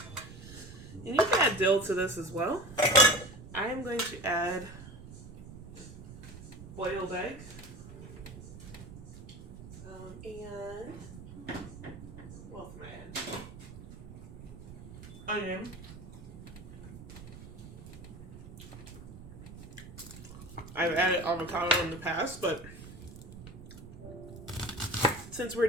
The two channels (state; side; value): noise; right; rumble, 14 dB below the sound